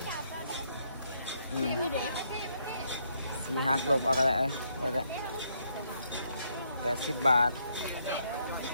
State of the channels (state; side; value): inverted; both; correlation -0.73